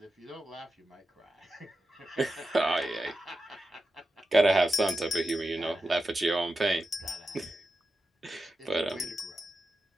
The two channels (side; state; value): both; normal; correlation 0.91